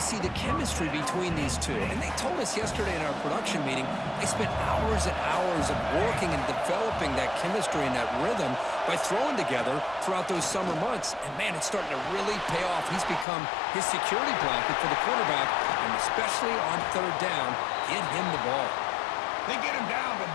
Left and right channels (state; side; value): drops out; right; at 13.2 s